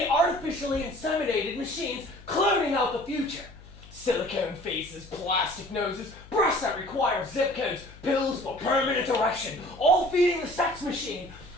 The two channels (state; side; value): noise; left; hum, 20 dB below the sound